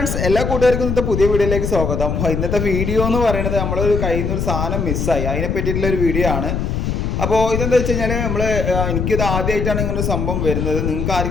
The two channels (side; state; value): left; noise; rumble, 1 dB below the sound